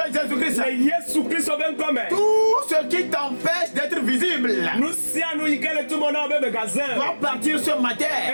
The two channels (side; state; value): both; inverted; correlation -1.00